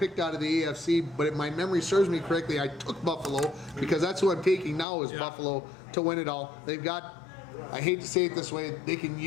out of the AFC, but if my memory serves me correctly, I took Buffalo because that's who I'm taking now is Buffalo to win it all. They've got, I hate to say it this way, they can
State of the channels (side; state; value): right; drops out; at 4.9 s